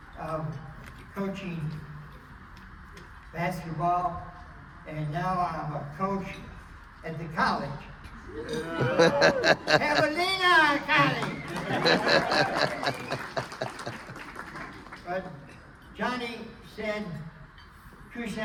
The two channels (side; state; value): both; identical; correlation 1.00